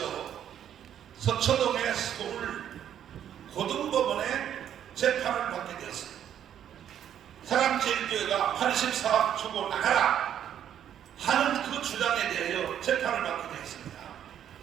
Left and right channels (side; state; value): left; quieter; 9.9 dB